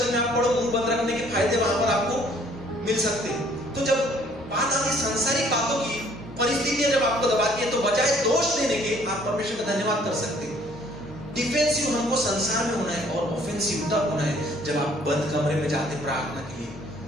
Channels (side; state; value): both; normal; correlation 0.60